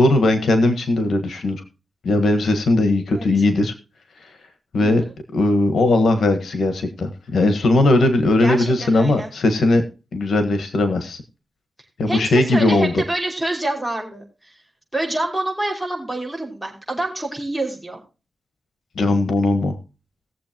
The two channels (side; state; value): both; normal; correlation 0.84